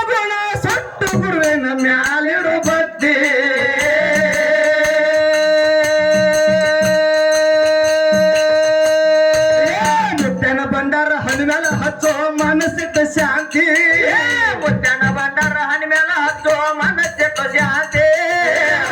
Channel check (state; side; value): identical; both; correlation 1.00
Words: ಗುಣ ಸುಟ್ಟು ಗುರುವಿನ ಮ್ಯಾಲಿಡು ಬತ್ತೆ ಮುತ್ತನ ಭಂಡಾರ ಹಣ್ಣು ಮ್ಯಾಲ ಹಚ್ಚೋ ಮನಸ್ಸಿಟ್ಟ ಶಾಂತಿ ಮುತ್ಯನ ಭಂಡಾರ ಹಣ್ಣಿ ಮೇಲ ಹಚ್ಚೋ ಮನಸ್ಸಿಟ್ಟು ಶಾಂತಿ